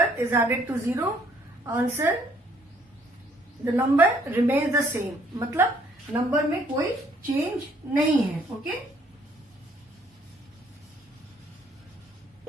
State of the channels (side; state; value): both; normal; correlation 0.64